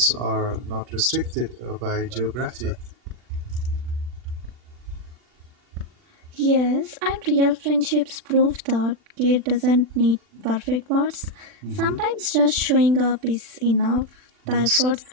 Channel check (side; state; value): left; late; 40 ms